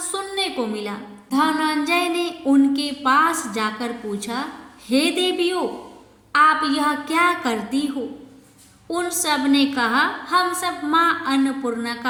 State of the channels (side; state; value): both; identical; correlation 1.00